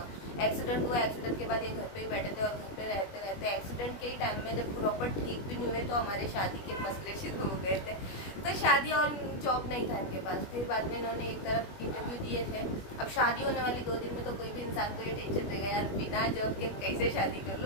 एक्सीडेंट हुआ, एक्सीडेंट के बाद ये घर पे ही बैठे थे और घर पे रहते रहते एक्सीडेंट के टाइम में जब प्रॉपर ठीक भी नहीं हुए तो हमारे शादी के मसले शुरू हो गए थे। तो शादी और जॉब नहीं था इनके पास। फिर बाद में इन्होंने एक तरफ इंटरव्यू दिए थे। अब शादी होने वाली 2 दिन में तो कोई भी इंसान को ये टेंशन रहेगा यार बिना जॉब के कैसे शादी कर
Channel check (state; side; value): late; right; 21 ms